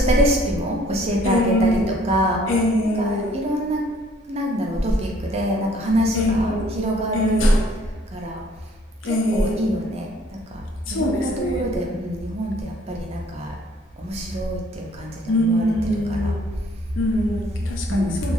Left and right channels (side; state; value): both; normal; correlation 0.60